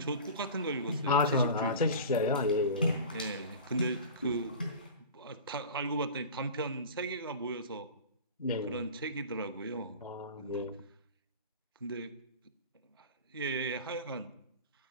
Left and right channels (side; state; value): both; inverted; correlation -0.35